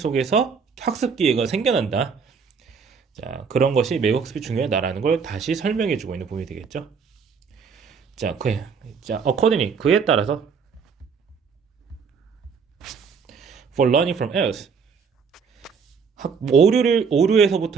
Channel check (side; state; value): left; quieter; 5.8 dB